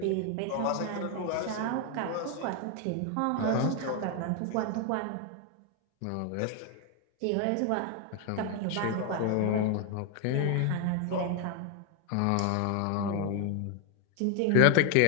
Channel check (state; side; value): different; both; correlation 0.01